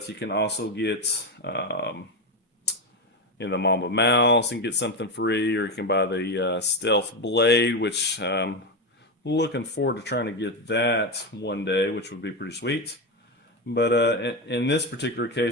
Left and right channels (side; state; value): both; normal; correlation 0.13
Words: you can also get the Mamba mouse and get something free, or you can buy the Stealth Blade, which looking forward to trying to get that one day, which would be pretty sweet. But in this particular